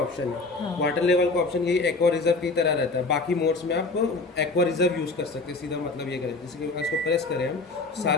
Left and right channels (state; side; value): quieter; right; 3.6 dB